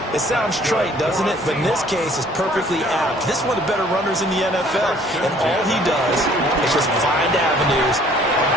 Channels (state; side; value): normal; both; correlation 0.57